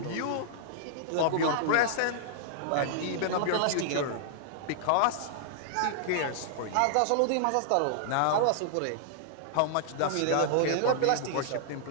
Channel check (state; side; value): different; both; correlation -0.01